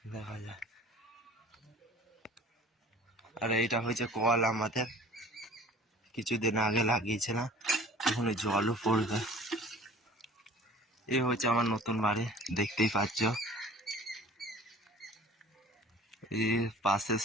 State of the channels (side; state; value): both; normal; correlation 0.46